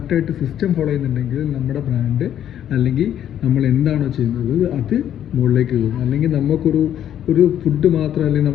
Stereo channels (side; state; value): right; quieter; 10.5 dB